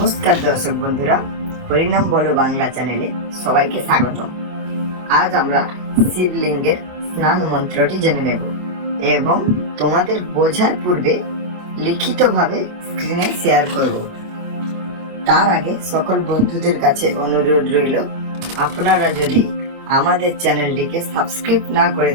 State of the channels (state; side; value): late; left; 25 ms